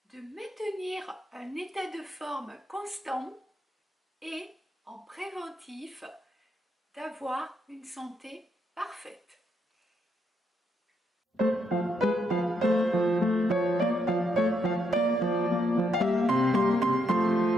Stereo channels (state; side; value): normal; both; correlation 0.78